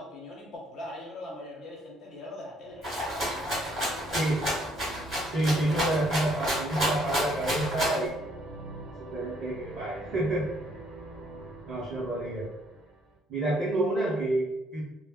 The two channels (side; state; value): both; normal; correlation 0.67